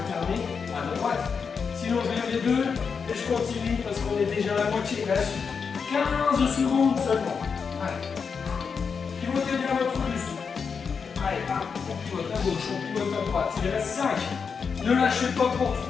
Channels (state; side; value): quieter; right; 5.8 dB